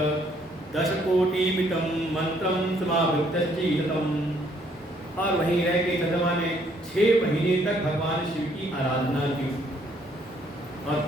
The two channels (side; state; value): both; normal; correlation 0.66